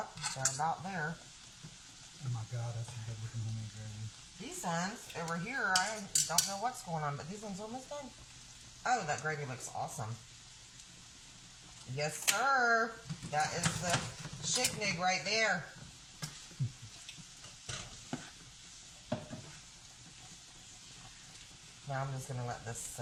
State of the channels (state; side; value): identical; both; correlation 1.00